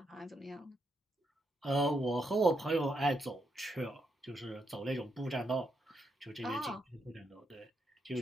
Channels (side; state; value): both; normal; correlation 0.80